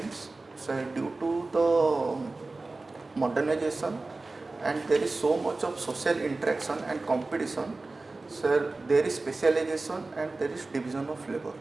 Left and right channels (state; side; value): quieter; left; 3.4 dB